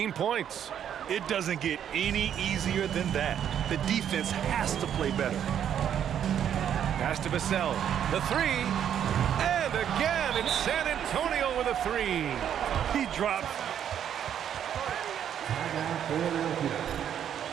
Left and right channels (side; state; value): left; quieter; 9.4 dB